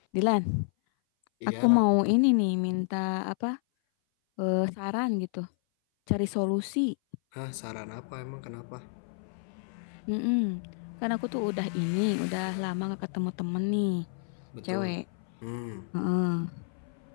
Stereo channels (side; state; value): right; silent; 57 dB below the other